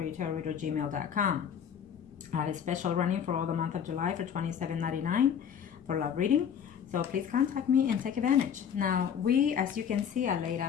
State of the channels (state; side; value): quieter; right; 8.1 dB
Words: I have a special running for all the month of July for $27.99 for love reading. So please contact me and take advantage. Now, as you can see, I laid